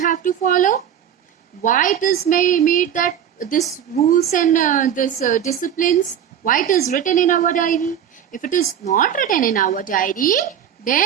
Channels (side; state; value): left; quieter; 9.3 dB